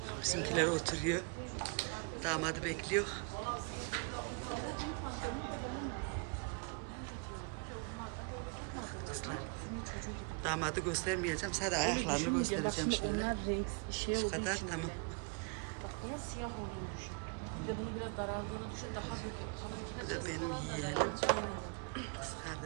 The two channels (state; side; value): quieter; left; 33.7 dB